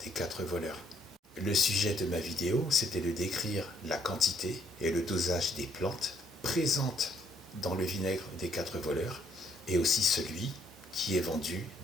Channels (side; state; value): both; normal; correlation 0.68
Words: des 4 voleurs. Le sujet de ma vidéo, c'était de décrire la quantité et le dosage des plantes présentes dans le vinaigre des 4 voleurs et aussi celui qui est vendu